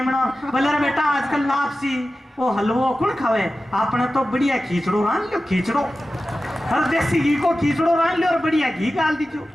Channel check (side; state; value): both; normal; correlation 0.94